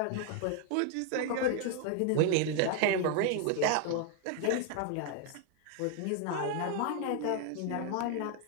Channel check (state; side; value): different; both; correlation 0.00